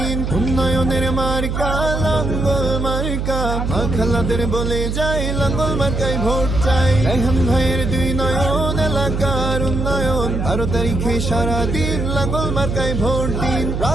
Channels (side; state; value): right; noise; hum, 2 dB below the sound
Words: উন্নয়নের মার্কা লাঙ্গল মার্কা খালাদের বলে যাই লাঙ্গল মার্কায় ভোট চাই রাইহান ভাইয়ের দুই নয়ন এলাকার উন্নয়ন 12 তারিখে সারাদিন লাঙ্গল মার্কায় ভোট দিন